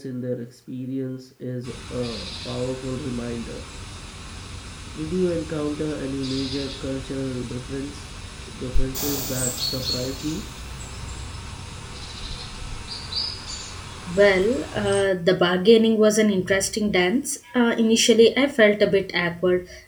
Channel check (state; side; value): identical; both; correlation 1.00